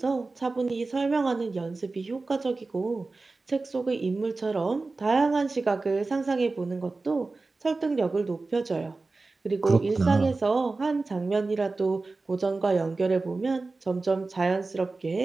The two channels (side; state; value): left; quieter; 3.6 dB